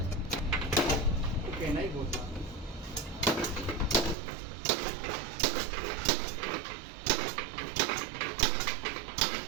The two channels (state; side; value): drops out; left; at 4.2 s